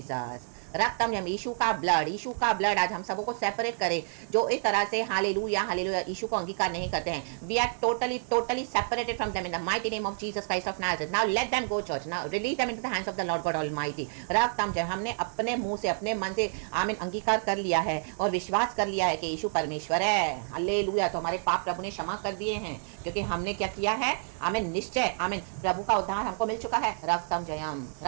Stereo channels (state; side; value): silent; left; 58 dB below the other